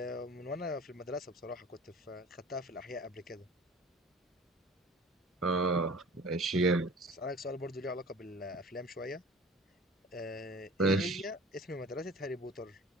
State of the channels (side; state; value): both; normal; correlation 0.43